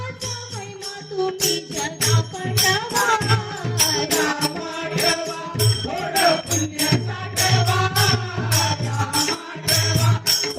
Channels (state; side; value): identical; both; correlation 1.00